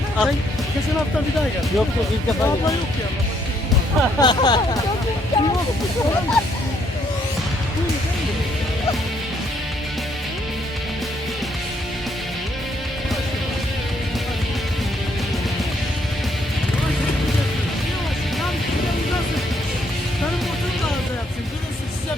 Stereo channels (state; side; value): normal; both; correlation 0.71